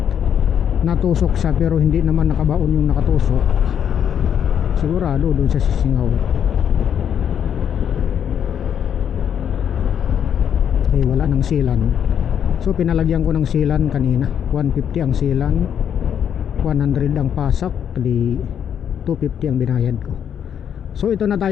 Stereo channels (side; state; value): right; quieter; 8.7 dB